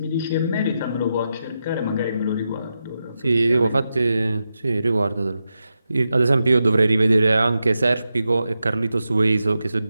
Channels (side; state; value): both; inverted; correlation -0.88